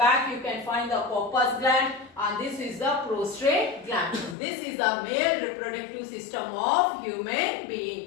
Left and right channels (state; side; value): drops out; right; at 4.4 s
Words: you can find the corpus gland, and this is the prostate gland. This is the male reproductive system of human